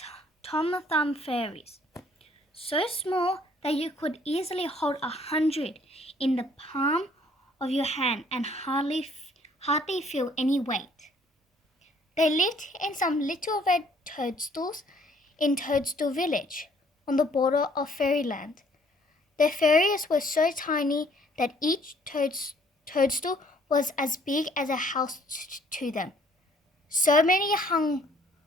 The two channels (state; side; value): normal; both; correlation 0.61